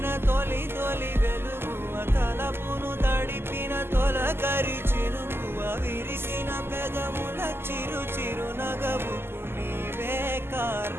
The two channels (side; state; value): left; late; 0.12 ms